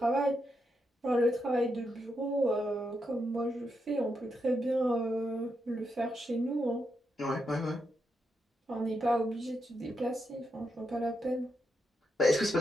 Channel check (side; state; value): both; normal; correlation 0.83